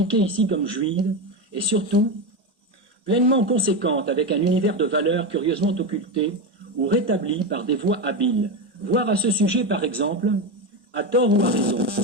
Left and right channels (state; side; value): normal; both; correlation 0.15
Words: ici comme juive, et surtout pleinement conséquente avec un univers de valeurs curieusement occulté ou rétabli par des voies habiles. Voir à ce sujet, par exemple, à tort ou à raison,